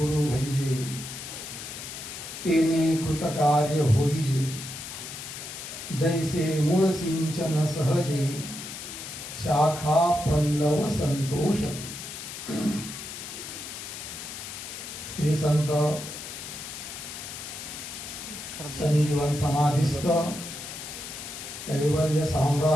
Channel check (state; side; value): noise; left; hiss, 9 dB below the sound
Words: भैजे, तेने कृतकार्य होईजे. जैसे मूळ सिंचन सहजे, शाखा पल्लव संतोषते. श्री संत संजीवन समाधिस्थ कैवल्य